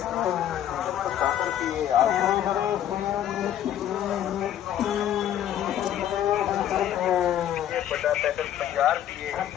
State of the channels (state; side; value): quieter; right; 11.0 dB